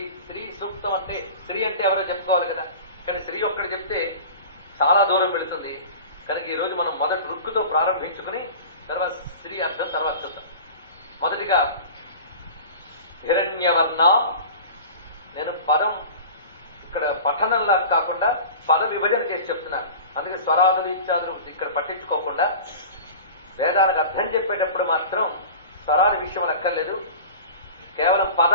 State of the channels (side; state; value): both; inverted; correlation -0.37